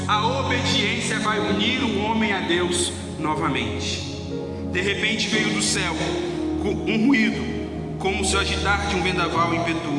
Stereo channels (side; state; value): both; identical; correlation 1.00